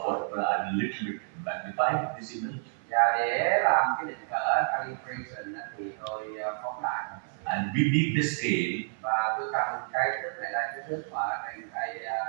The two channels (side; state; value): left; silent; 58 dB below the other